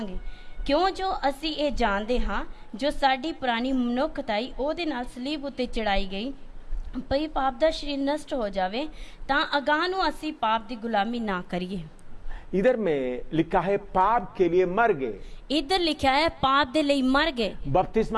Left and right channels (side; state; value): both; identical; correlation 1.00